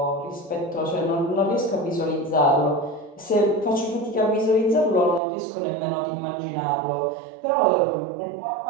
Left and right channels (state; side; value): drops out; left; at 5.2 s